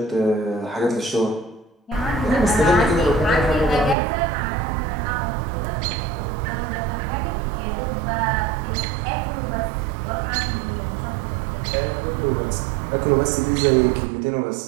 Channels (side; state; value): left; drops out; at 4.0 s